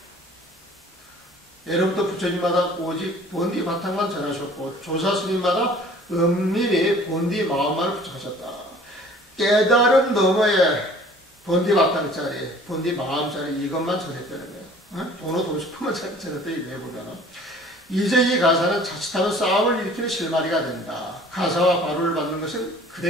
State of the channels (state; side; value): normal; both; correlation 0.50